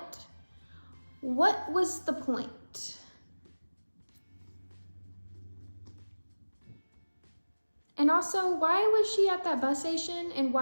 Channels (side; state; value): both; inverted; correlation -1.00